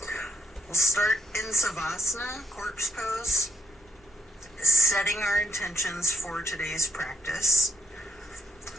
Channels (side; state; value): both; normal; correlation 0.81